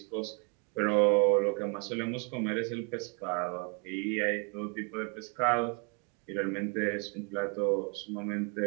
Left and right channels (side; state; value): left; quieter; 34.8 dB